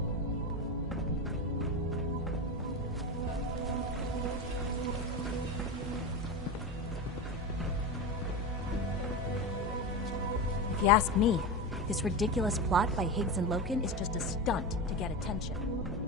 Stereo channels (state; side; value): normal; both; correlation 0.20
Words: If you ask me, this ridiculous plot by Higgs and Loken is just a stunt to get attention.